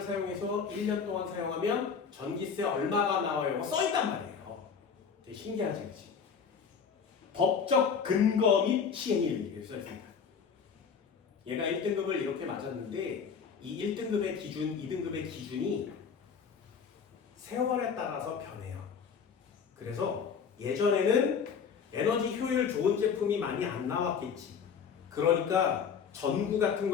사용해서 1년 동안 사용하면 전기세 얼마가 나와요. 써있단 말이에요. 되게 신기하지, 그치? 법적 근거 및 시행일 이렇게 써있습니다. 얘가 1등급을 이렇게 맞았는데 이 1등급의 기준, 2등급의 기준이 세월에 따라서 변해요. 그래서 예전에는 에너지 효율 좋은 제품이 많이 안 나왔겠지. 그러니까 전구 같은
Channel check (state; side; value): quieter; right; 6.4 dB